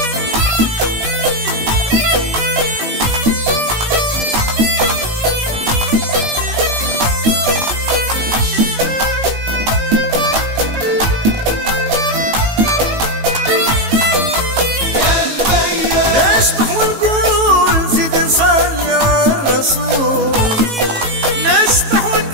نشبح ونقول زيد نصلي على الرسول نشبح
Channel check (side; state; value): left; late; 18 ms